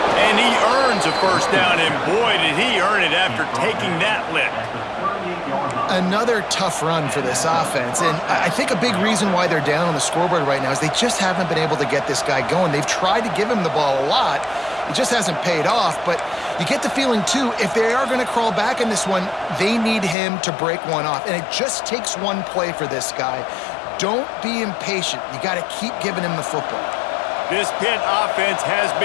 And he earns a first down, and boy, did he earn it after taking that lick. Another tough run for this offense, and I think a big reason why they're down on the scoreboard right now is they just haven't been able to get this guy going. They've tried to give him the ball a lot. It just hasn't paid off, but you get the feeling, too, if they are going to crawl back in this one, they need him to break one off, and it just takes one play for this guy. Don't be impatient. You got to keep giving him the football. This Pitt offense has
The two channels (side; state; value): right; drops out; at 20.2 s